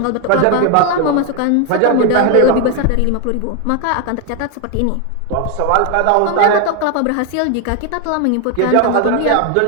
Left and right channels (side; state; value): both; different; correlation 0.01